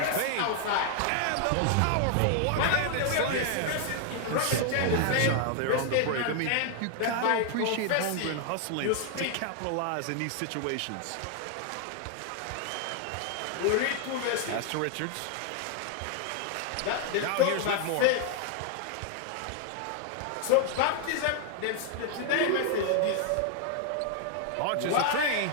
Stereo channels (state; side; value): different; both; correlation 0.00